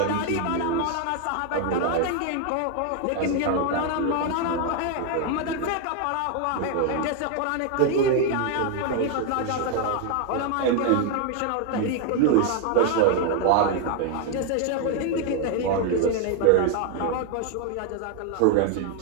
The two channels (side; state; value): both; different; correlation 0.00